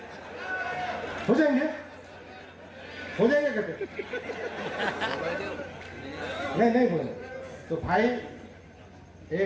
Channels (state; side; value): identical; both; correlation 1.00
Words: हो जाएंगे? हो जाएंगे कहते? नहीं बोले। तो भाई